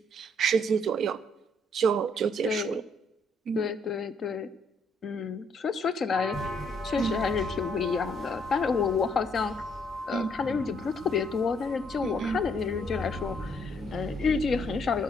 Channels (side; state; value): both; normal; correlation 0.69